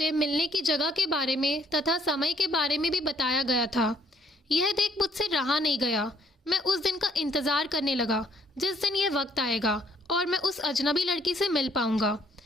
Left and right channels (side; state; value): both; normal; correlation 0.65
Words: मिलने की जगह के बारे में तथा समय के बारे में भी बताया गया था। यह देख मुझसे रहा नहीं गया। मैं उस दिन का इंतज़ार करने लगा जिस दिन यह वक्त आएगा और मैं उस अजनबी लड़की से मिल पाऊंगा।